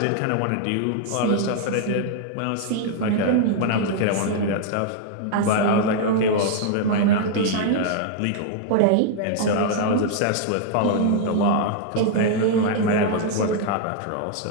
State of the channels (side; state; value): both; different; correlation 0.00